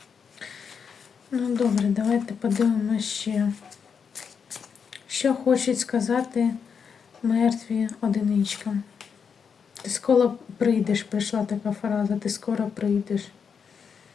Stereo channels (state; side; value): quieter; right; 6.5 dB